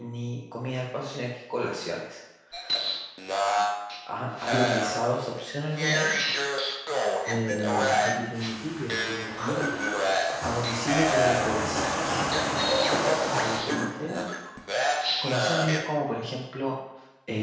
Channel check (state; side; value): identical; both; correlation 1.00